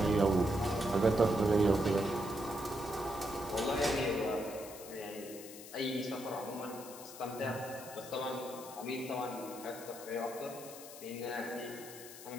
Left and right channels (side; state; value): left; noise; hiss, 14 dB below the sound